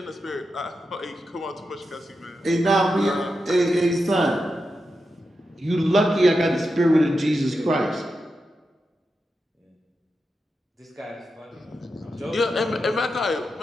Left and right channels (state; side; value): normal; both; correlation 0.88